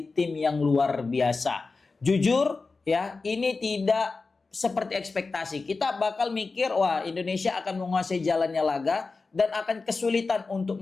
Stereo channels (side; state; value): right; quieter; 4.0 dB